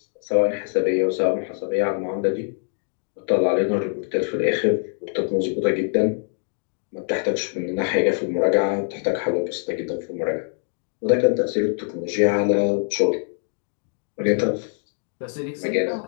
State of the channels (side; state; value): right; silent; 62 dB below the other